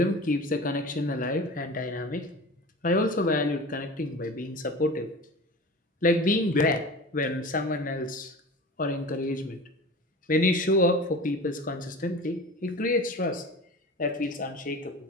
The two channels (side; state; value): both; normal; correlation 0.35